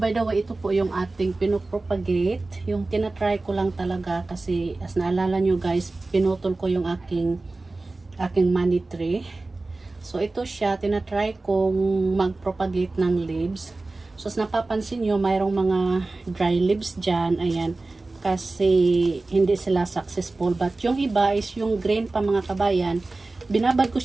by the way, ito po yung ating pinopropagate. Yung tinatry ko lang talaga kasi as naalala nyo guys, pinutol ko yung aking money tree. So, ito siya. Tinatry kong mag-propagate ng leaves. So, as napapansin nyo, mayroong mga dry leaves dyan. Ayan. Kasi hindi sila successful. But yung iba is yung green pa mga kabayan. Binabad ko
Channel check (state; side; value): quieter; left; 3.3 dB